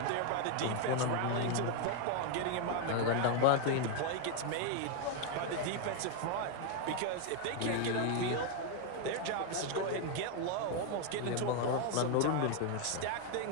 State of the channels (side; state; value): both; different; correlation 0.01